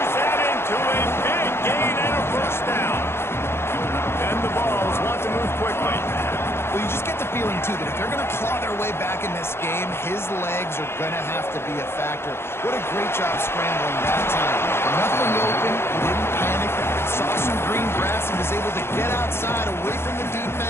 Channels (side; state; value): right; late; 0.12 ms